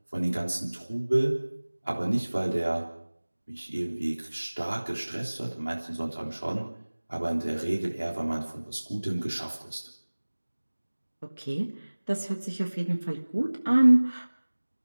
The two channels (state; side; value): inverted; both; correlation -1.00